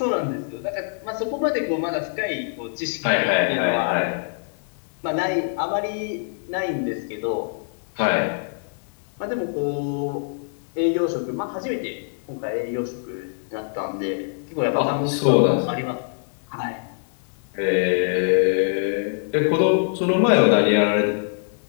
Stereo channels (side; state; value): right; silent; digital silence